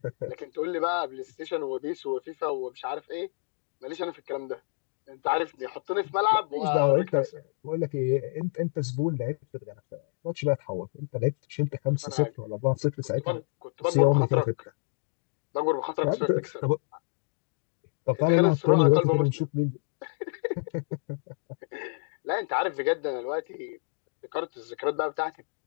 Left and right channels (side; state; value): right; silent; digital silence